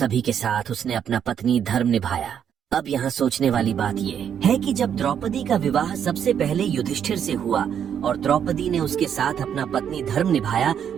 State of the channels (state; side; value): quieter; left; 8.6 dB